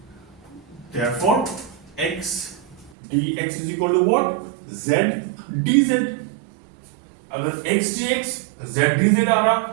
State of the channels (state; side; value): drops out; left; at 2.9 s